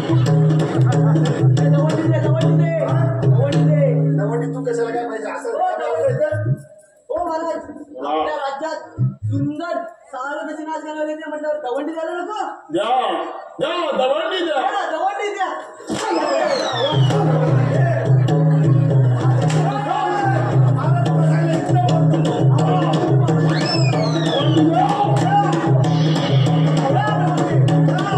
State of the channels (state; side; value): identical; both; correlation 1.00